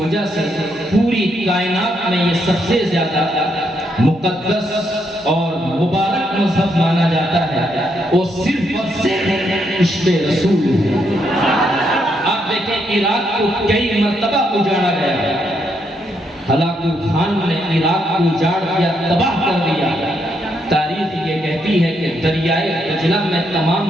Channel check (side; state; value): both; normal; correlation 0.77